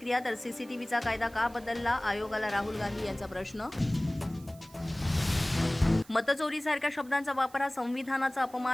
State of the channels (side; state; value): right; noise; hiss, 24 dB below the sound